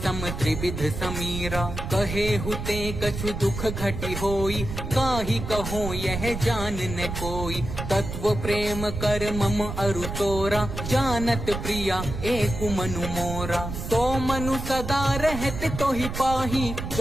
सम त्रिविध समीरा। कहे हुते कछु दुख घटी होई, काहि कहो यह जान न कोई। तत्व प्रेम कर मम अरु तोरा, जानत प्रिया एक मनु मोरा। सो मनु सदा रहत तो ही पाही,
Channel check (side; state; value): right; noise; rumble, 6 dB below the sound